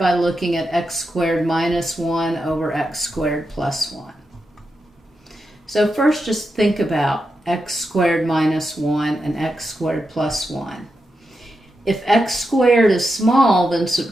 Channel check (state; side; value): normal; both; correlation 0.87